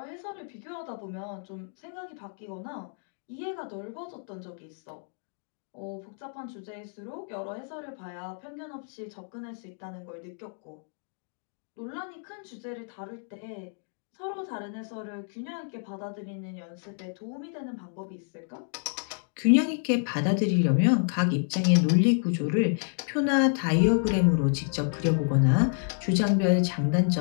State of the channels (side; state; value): right; silent; 58 dB below the other